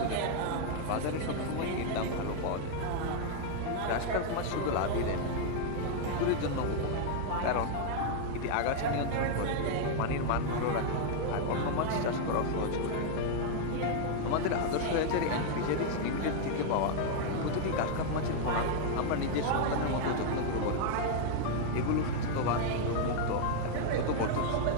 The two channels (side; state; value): both; different; correlation 0.00